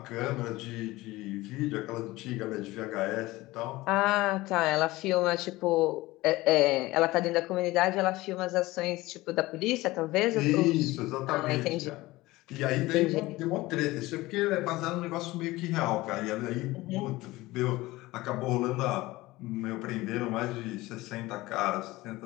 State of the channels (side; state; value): right; quieter; 19.3 dB